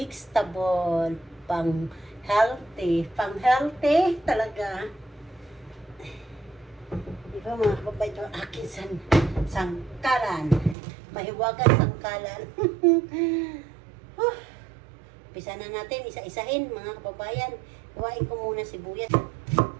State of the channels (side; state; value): left; drops out; at 10.8 s